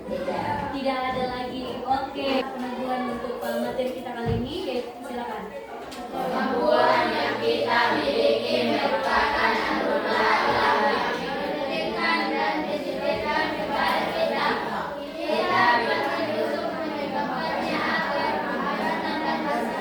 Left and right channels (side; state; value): both; identical; correlation 1.00